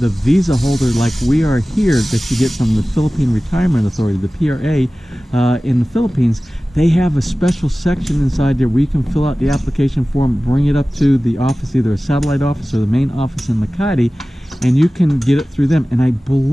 visa holder like we are here, that you get from the Philippine Retirement Authority, the PRA, in the Philippines, they have a special section inside there where you can fill out the application form, bring it up to the office, either a satellite office or the main office in Makati, and you can get it through them. And I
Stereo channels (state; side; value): normal; both; correlation 0.97